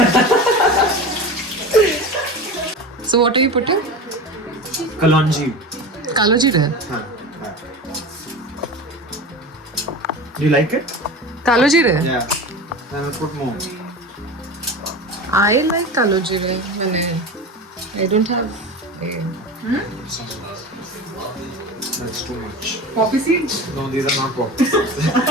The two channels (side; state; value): both; normal; correlation 0.30